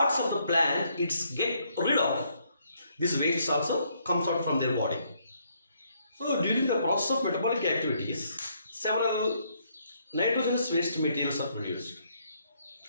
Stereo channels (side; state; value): both; inverted; correlation -0.71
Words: of the plant it's get rid of, this waste also comes out from their body. So during the process of metabolic activities, several nitrogenous waste materials are produced.